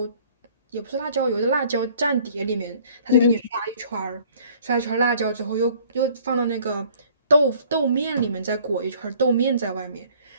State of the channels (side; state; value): both; inverted; correlation -0.55